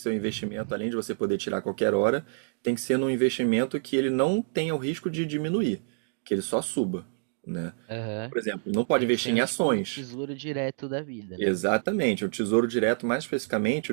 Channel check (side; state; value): left; silent; digital silence